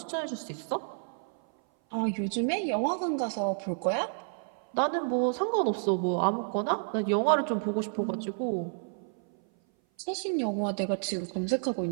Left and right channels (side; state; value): left; silent; 56 dB below the other